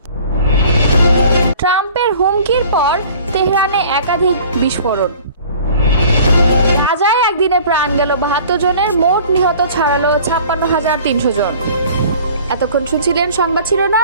ট্রাম্পের হুমকির পর তেহরানে একাধিক বিস্ফোরণ। গাজায় একদিনে প্রাণ গেল ৭২ জনের, মোট নিহত ছাড়ালো ৫৬,৩০০ জন। এতক্ষণ শুনছিলেন সংবাদ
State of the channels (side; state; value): both; inverted; correlation -0.48